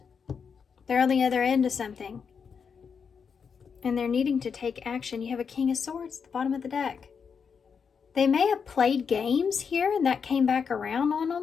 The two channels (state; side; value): quieter; right; 6.3 dB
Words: They're on the other end of something. And they're needing to take action. You have a King of Swords at the bottom of the deck. They may have played games here and that came back around on